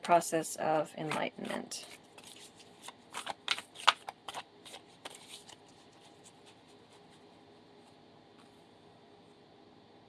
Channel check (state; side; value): identical; both; correlation 1.00